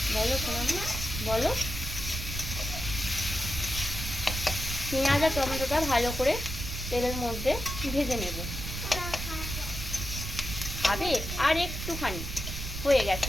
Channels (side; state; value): right; noise; rumble, 6 dB below the sound